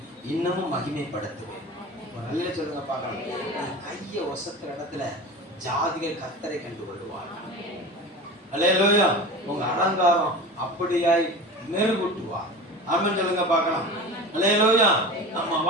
இன்னமும் மகிமைப்படுத்துவேன். நல்ல சொல்லுங்க பார்க்கலாம். கையை ஒசத்துற இடத்துல ஜாதிகள் கர்த்தரை கண்டு கொள்வார்கள். அல்லேலூயா. உங்க அலங்காரம் அப்படியாய் மெருகூட்டுவார். ஆமென் சொல்லுங்க பார்க்கலாம். அல்லேலூயா. நம்ம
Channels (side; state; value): both; normal; correlation 0.32